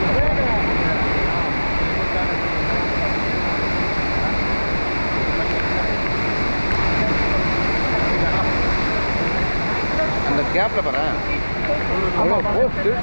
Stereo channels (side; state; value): both; inverted; correlation -1.00